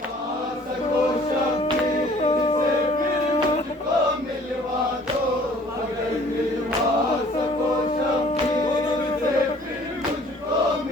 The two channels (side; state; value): both; normal; correlation 0.54